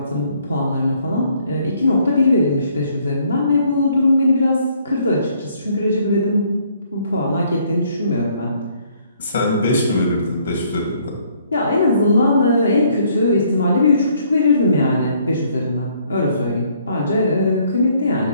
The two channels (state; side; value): inverted; both; correlation -0.65